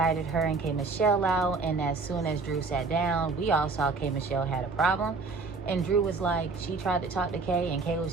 her and K. Michelle out, and as soon as Drew sat down, we all saw K. Michelle had a problem. And Drew was like, she tried to talk to Kay, and Kay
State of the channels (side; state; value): left; quieter; 4.0 dB